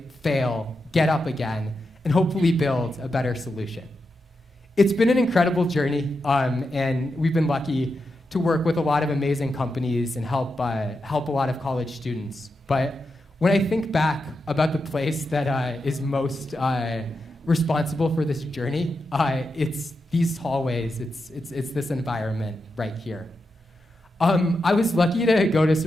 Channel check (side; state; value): both; normal; correlation 0.87